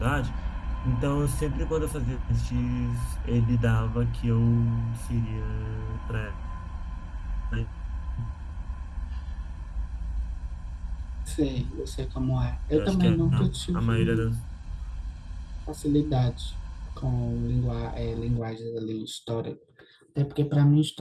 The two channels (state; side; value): identical; both; correlation 1.00